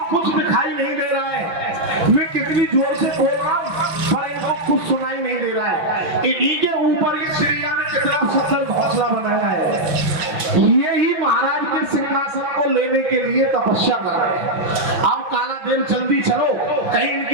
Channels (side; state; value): left; late; 5.9 ms